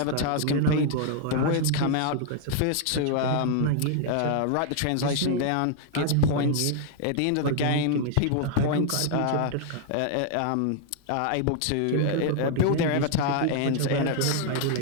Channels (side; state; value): both; different; correlation 0.00